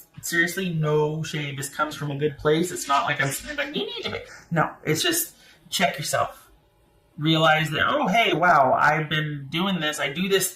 seriously, no shade. This comes from a good place. It's not like I'm saying, like, you need to be. No, it's just check yourself. Realize that, oh, hey, wow, I've been doing this. I do this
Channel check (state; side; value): identical; both; correlation 1.00